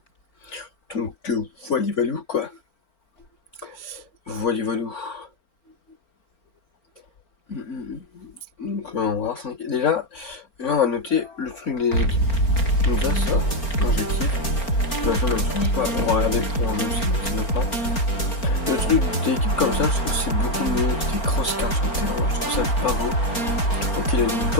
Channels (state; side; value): late; right; 4.4 ms